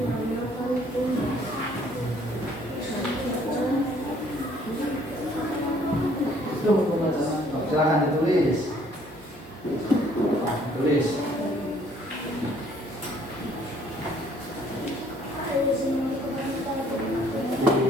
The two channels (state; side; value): normal; both; correlation 0.61